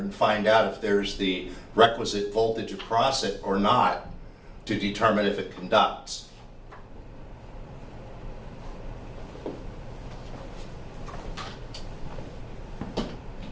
find out if there's the requisite voltage across it or not to determine if it conducts.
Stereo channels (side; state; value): both; identical; correlation 1.00